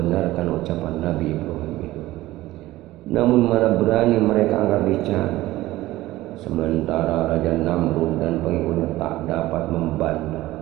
ucapan Nabi Ibrahim itu. Namun mana berani mereka angkat bicara. Sementara Raja Namrud dan pengikutnya tak dapat membantah.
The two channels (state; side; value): quieter; left; 17.0 dB